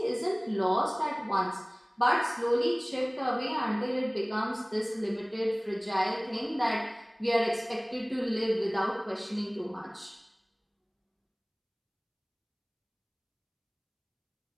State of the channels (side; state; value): both; identical; correlation 1.00